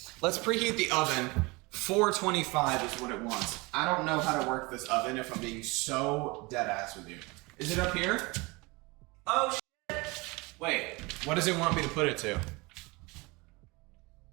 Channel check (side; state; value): left; quieter; 25.2 dB